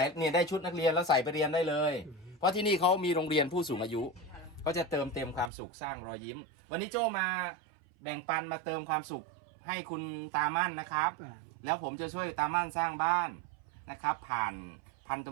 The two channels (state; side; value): drops out; left; at 5.5 s